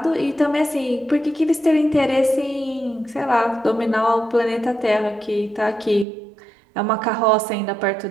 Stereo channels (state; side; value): drops out; left; at 6.1 s